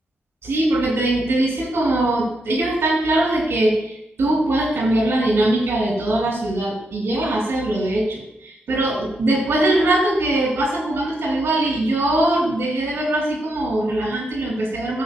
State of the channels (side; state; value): both; normal; correlation 0.80